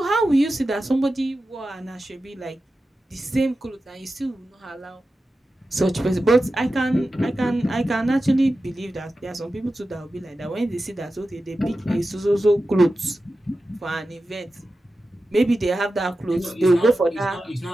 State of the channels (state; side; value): normal; both; correlation 0.92